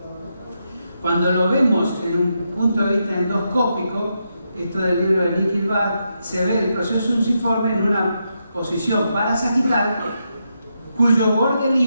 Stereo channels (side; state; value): both; inverted; correlation -0.83